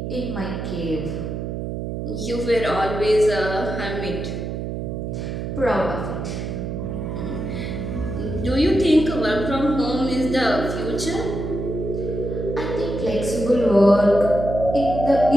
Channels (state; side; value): noise; right; hum, 4 dB below the sound